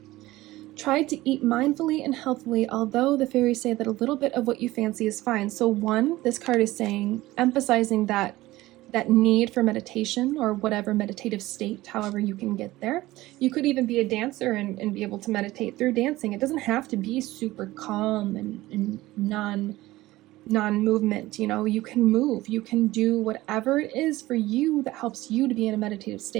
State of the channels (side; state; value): left; quieter; 17.7 dB